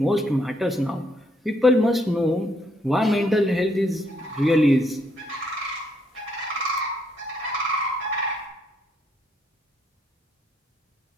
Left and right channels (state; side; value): normal; both; correlation 0.73